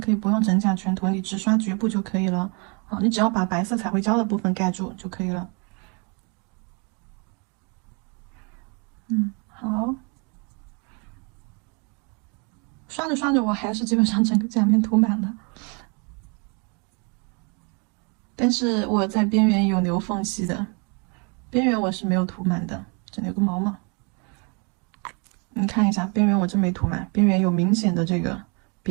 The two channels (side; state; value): left; quieter; 33.9 dB